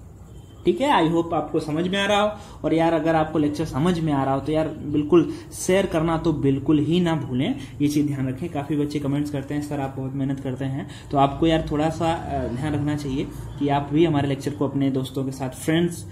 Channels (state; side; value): identical; both; correlation 1.00